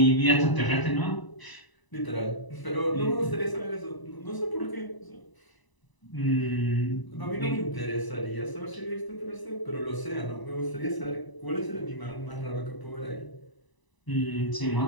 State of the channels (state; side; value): late; right; 1.0 ms